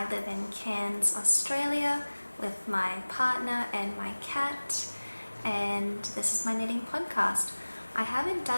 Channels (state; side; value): inverted; both; correlation -1.00